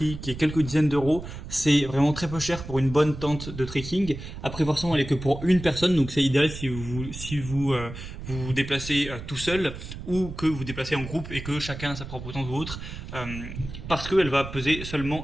qui est quelques dizaines d'euros. C'est vraiment très peu cher pour une bonne tente de trekking. Après forcément elle est que pour une personne, donc c'est idéal si vous vous déplacez tout seul ou que vous déplacez en groupe et que chacun a sa propre tente ou autre, parce qu'elle va peser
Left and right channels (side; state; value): right; noise; rumble, 10 dB below the sound